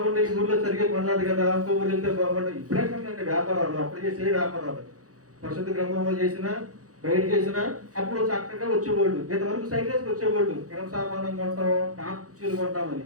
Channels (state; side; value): late; left; 0.66 ms